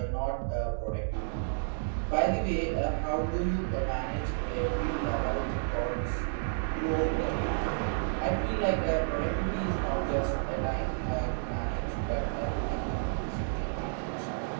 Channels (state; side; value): silent; left; digital silence